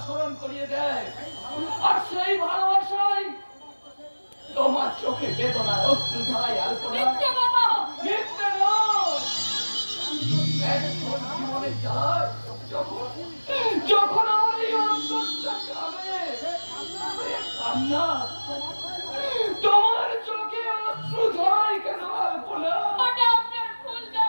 স্মরণ করিয়ে দেয়, আর সেই ভালোবাসাই তোমার চোখে বেদনার অশ্রু ধারায় আলপনা। মিথ্যে কথা। মিথ্যে নয়, একজন জীবনে যায় যখন যখন আমার এই অন্তরটা কাঁদে, কান্না তোমার চোখে অশ্রু ঝরায় কেন আলপনা? ওটা আপনার ভুল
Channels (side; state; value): both; inverted; correlation -1.00